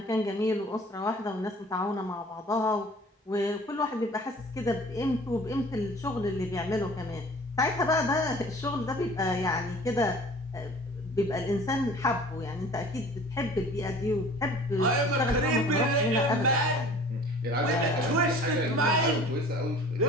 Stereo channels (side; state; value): both; normal; correlation 0.47